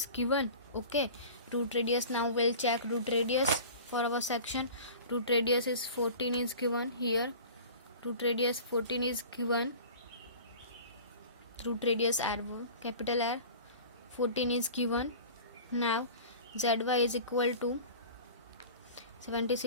given. Okay, root radius, now we'll check root radius for our section. Root radius is 14 is given here. Root radius 14 is given. Root radius R, capital R, 14 is given. Now ZY is equal to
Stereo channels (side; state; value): both; inverted; correlation -0.40